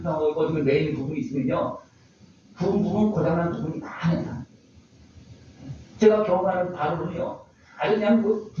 어떤 매이는 부분이 있으면요. 부분 고장난 부분이 많아요. 제가 경험하는 바로는요. 아주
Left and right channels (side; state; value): both; identical; correlation 1.00